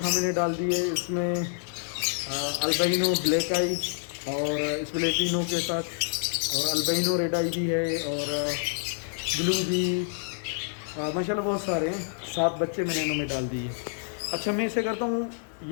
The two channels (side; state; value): right; silent; digital silence